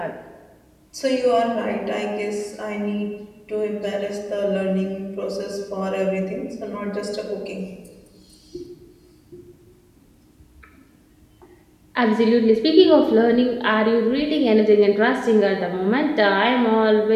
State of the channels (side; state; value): both; identical; correlation 1.00